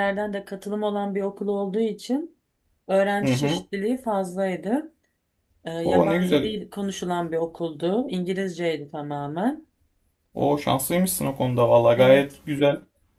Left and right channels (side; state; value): both; identical; correlation 1.00